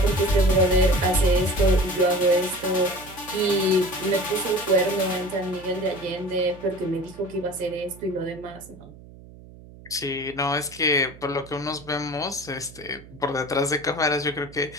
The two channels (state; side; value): noise; right; hum, 20 dB below the sound